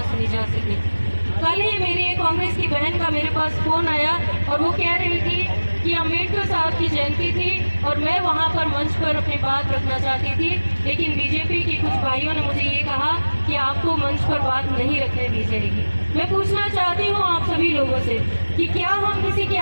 सुनी जा सके। कल ही मेरी एक कांग्रेस की बहन का मेरे पास फ़ोन आया और वो कह रही थी कि अम्बेडकर साहब की जयंती थी और मैं वहाँ पर मंच पर अपनी बात रखना चाहती थी, लेकिन बीजेपी के कुछ भाइयों ने मुझे ये कहा कि आपको मंच पर बात नहीं रखने दी जाएगी। मैं पूछना चाहती हूँ आप सभी लोगों से कि क्या हम किसी की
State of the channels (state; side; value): inverted; both; correlation -1.00